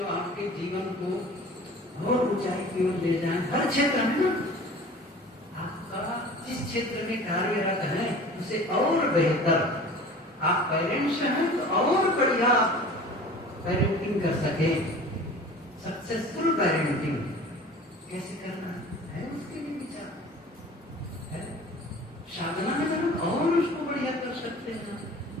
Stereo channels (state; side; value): normal; both; correlation 0.42